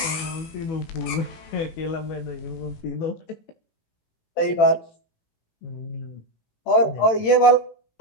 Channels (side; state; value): right; late; 18 ms